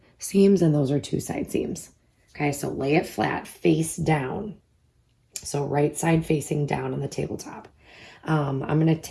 seams and those are 2 side seams. Okay, so lay it flat, face down. So right side facing down on the tabletop. I'm going to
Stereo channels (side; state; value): both; identical; correlation 1.00